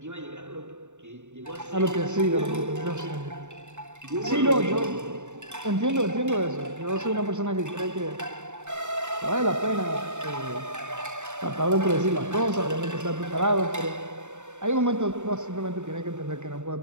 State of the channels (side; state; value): left; late; 0.84 ms